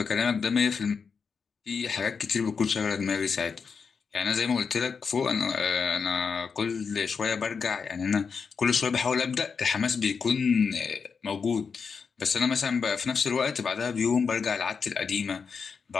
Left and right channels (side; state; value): right; quieter; 5.7 dB